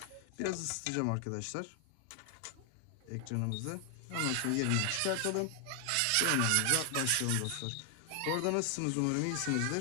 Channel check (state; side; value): different; both; correlation 0.00